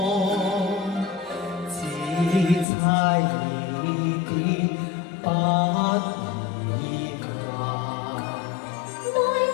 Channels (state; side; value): drops out; right; at 2.7 s